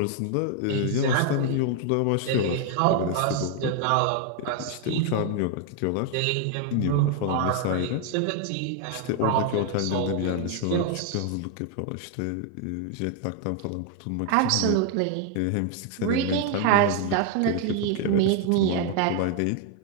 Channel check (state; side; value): different; both; correlation 0.00